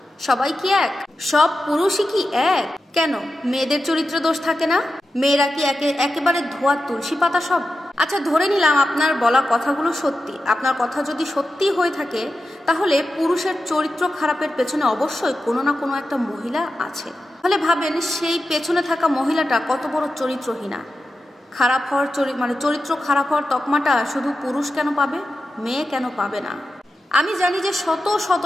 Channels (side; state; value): both; normal; correlation 0.91